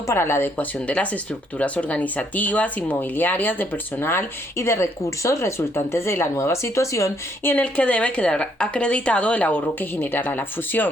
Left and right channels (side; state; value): both; normal; correlation 0.70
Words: para la adecuación de las estructuras organizativas, inmobiliarias, de personal y de recursos resultantes de la nueva situación y en el que debe quedar acreditado el ahorro que generará la